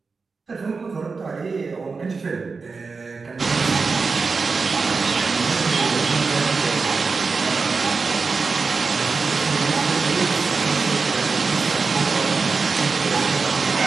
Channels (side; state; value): left; quieter; 4.5 dB